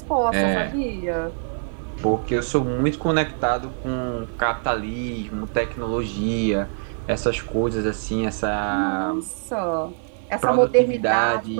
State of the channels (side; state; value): left; silent; 57 dB below the other